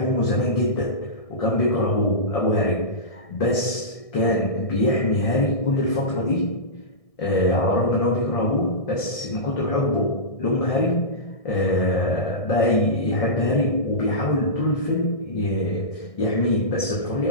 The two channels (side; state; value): right; late; 1.6 ms